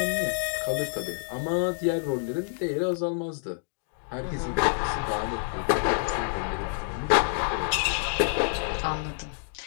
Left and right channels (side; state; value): right; silent; digital silence